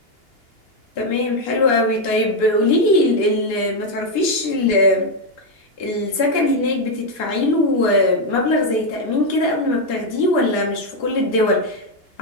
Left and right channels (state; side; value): late; right; 2.8 ms